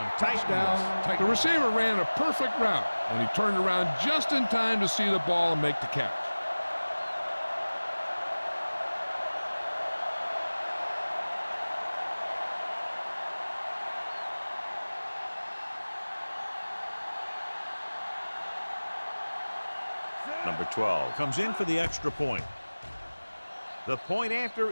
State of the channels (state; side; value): inverted; both; correlation -1.00